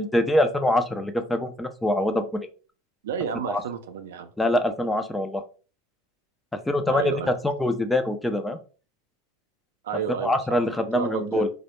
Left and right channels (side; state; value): both; normal; correlation 0.67